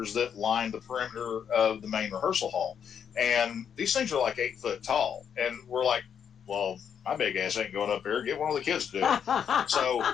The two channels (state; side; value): quieter; right; 8.0 dB